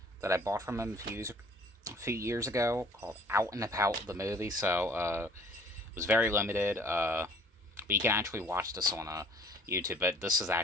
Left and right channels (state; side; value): normal; both; correlation 0.54